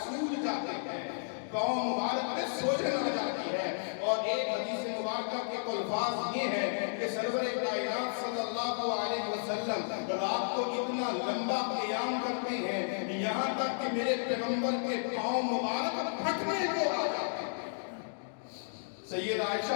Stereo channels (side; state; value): right; silent; digital silence